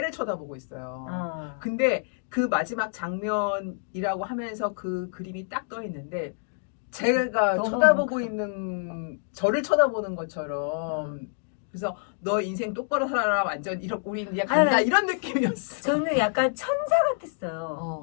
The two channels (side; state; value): right; silent; digital silence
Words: 쳐다보고 있어요. 근데 그 마지막 장면이라고 하면서 그 그림이 딱 떠 있는데 제가 쳐다보고 있는 저를 쳐다보는 것처럼 그래서 너 인생 똑바로 살아라 완전 이렇게 우린 이제 간다 이런 느낌이었어. 저는 약간 천사